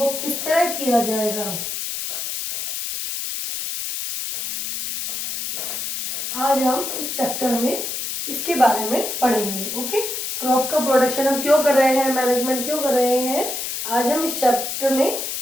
किस तरह किया जाएगा, आज हम इस चैप्टर में इसके बारे में पढ़ेंगे। ओके, क्रॉप का प्रोडक्शन हम क्यों कर रहे हैं, मैनेजमेंट क्यों कर रहे हैं, आज हम इस चैप्टर में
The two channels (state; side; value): noise; left; hiss, 4 dB below the sound